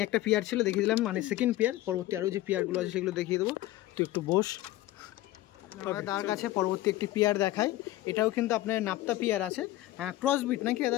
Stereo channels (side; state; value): right; quieter; 16.1 dB